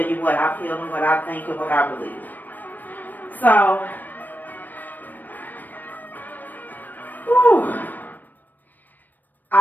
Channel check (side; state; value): right; late; 0.088 ms